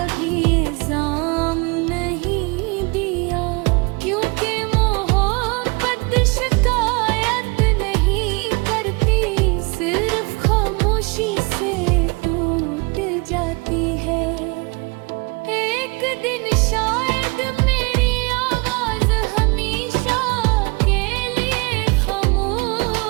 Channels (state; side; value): quieter; left; 28.5 dB